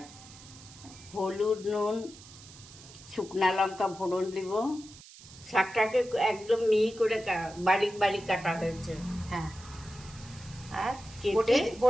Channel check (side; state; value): right; noise; hiss, 19 dB below the sound